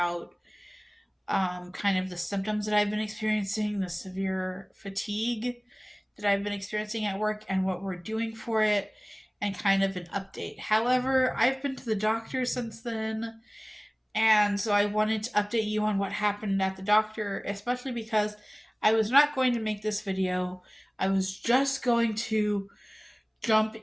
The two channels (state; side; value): identical; both; correlation 1.00